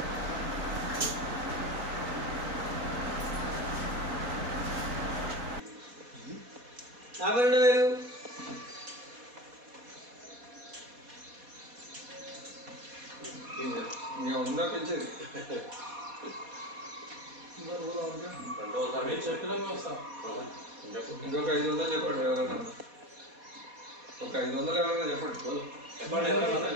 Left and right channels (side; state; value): left; late; 4.2 ms